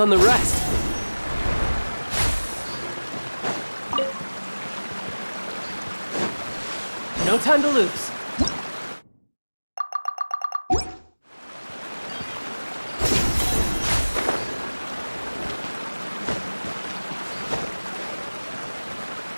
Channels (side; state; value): both; inverted; correlation -1.00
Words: the rest. No time to lose.